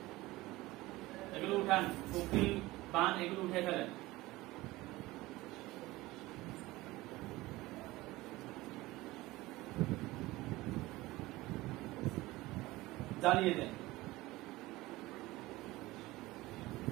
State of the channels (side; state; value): left; quieter; 19.2 dB